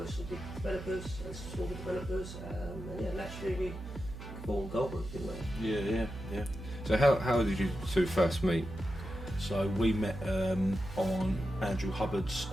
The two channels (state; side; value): noise; right; hum, 11 dB below the sound